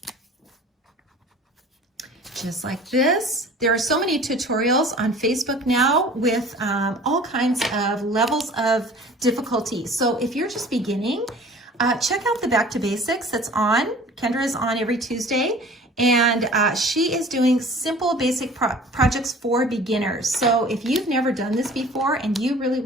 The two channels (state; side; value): normal; both; correlation 0.46